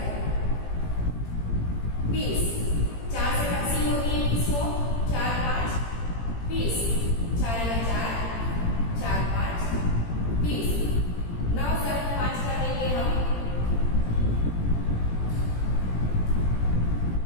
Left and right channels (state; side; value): late; right; 17 ms